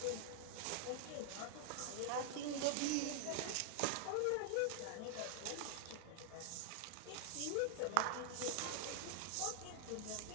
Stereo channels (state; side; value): different; both; correlation 0.00